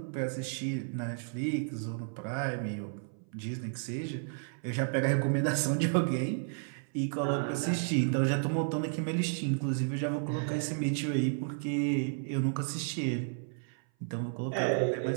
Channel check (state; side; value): silent; left; 56 dB below the other